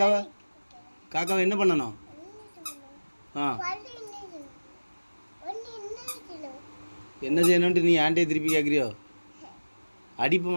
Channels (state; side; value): inverted; both; correlation -1.00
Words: காக்காவை என்ன பண்ணணும்? ஆ, என்ன செய்யணும்ட்டு நீ ஆண்டே திருப்பி கேட்குறியோ?